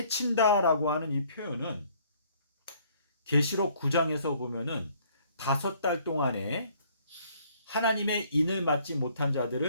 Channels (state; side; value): inverted; both; correlation -0.61